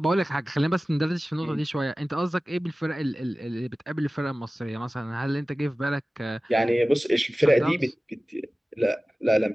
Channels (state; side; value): normal; both; correlation 0.96